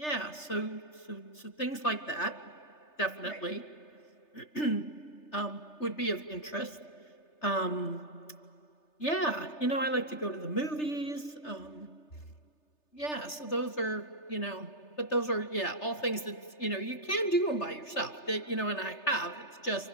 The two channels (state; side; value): late; right; 3.3 ms